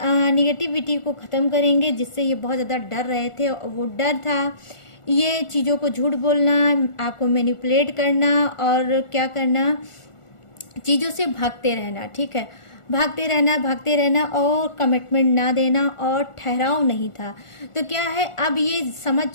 निगेटिविटी को ख़त्म करेंगे, जिससे ये बहुत ज़्यादा डर रहे थे। और वो डर था ये चीज़ों को झूठ बोलना, आपको मैनिपुलेट करना और क्या करना, चीज़ों से भागते रहना, ठीक है, भागते रहना और कमिटमेंट ना देना और ठहराव नहीं था। तो क्या है, अब ये समझ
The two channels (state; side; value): late; right; 1.4 ms